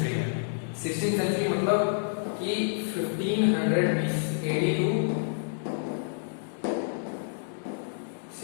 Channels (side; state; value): right; silent; digital silence